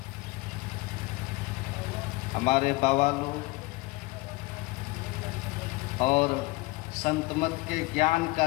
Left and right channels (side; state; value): right; quieter; 22.7 dB